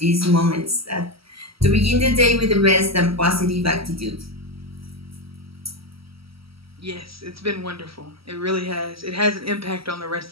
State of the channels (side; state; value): left; late; 0.75 ms